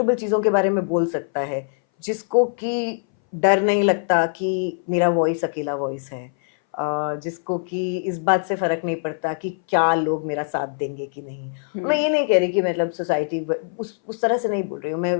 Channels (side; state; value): right; silent; 61 dB below the other